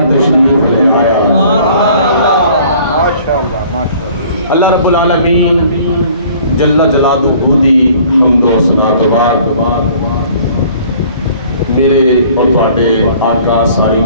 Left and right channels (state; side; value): inverted; both; correlation -0.53